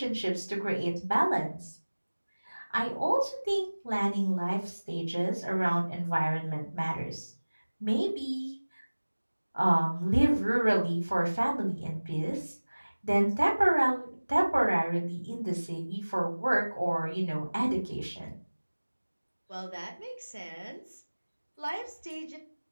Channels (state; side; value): inverted; both; correlation -1.00